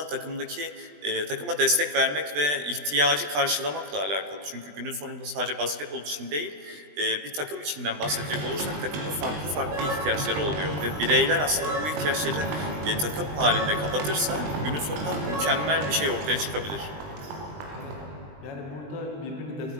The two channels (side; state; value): left; late; 20 ms